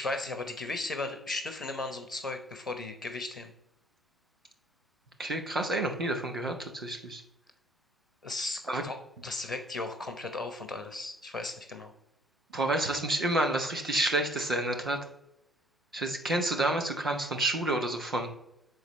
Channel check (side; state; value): both; normal; correlation 0.58